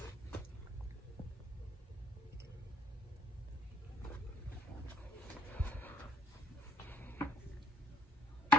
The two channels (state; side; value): normal; both; correlation 0.62